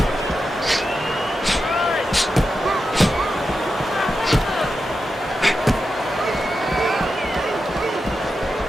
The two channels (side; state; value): both; normal; correlation 0.89